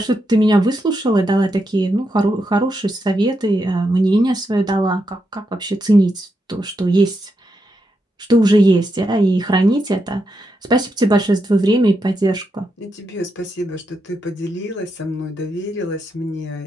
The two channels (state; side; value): normal; both; correlation 0.83